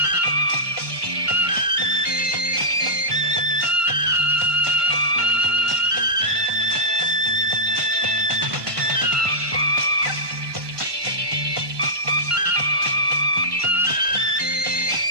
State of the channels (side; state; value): left; late; 1.2 ms